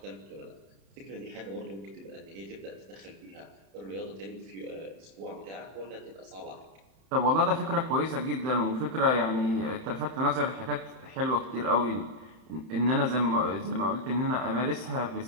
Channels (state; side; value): late; left; 31 ms